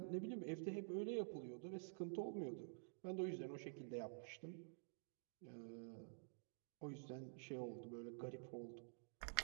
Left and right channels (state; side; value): silent; left; digital silence